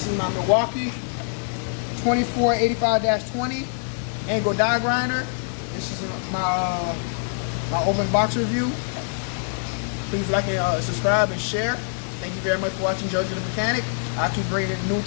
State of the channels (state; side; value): silent; right; digital silence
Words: Milwaukee 2485-20 angle die grinder. This is my open box review. Please like and subscribe and share. Thank you very much for watching Jojo the Mechanic. I'll keep bringing new